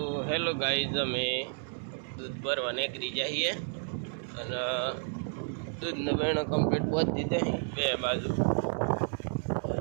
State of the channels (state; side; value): silent; left; 57 dB below the other